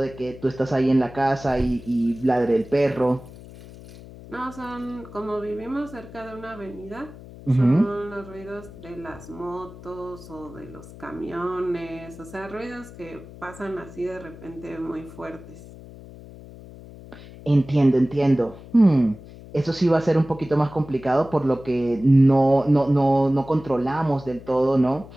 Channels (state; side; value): noise; left; hum, 17 dB below the sound